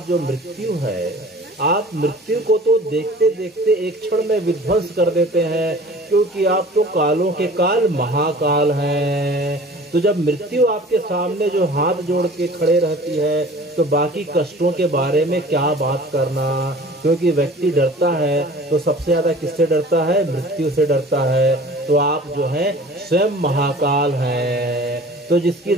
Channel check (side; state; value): both; normal; correlation 0.45